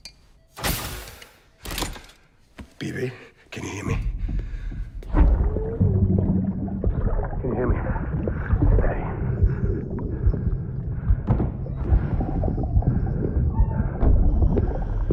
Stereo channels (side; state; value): both; identical; correlation 1.00